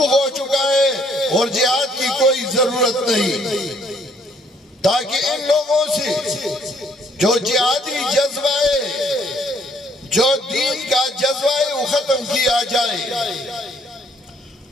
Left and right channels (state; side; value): normal; both; correlation 0.65